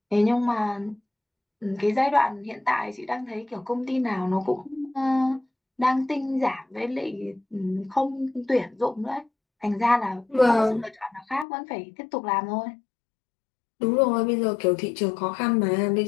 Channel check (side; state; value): right; drops out; at 11.5 s